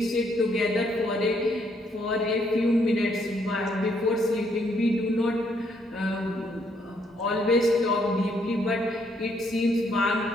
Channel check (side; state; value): both; normal; correlation 0.71